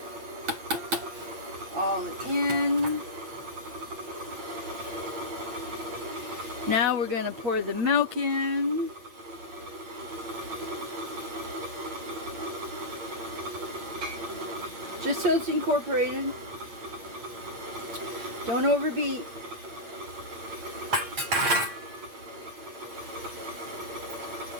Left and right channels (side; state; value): left; late; 8.7 ms